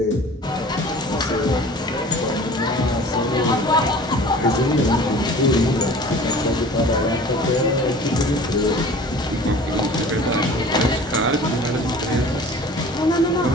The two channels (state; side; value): normal; both; correlation 0.44